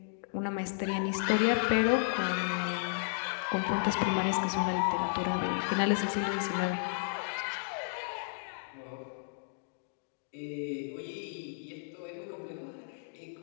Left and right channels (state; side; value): silent; right; digital silence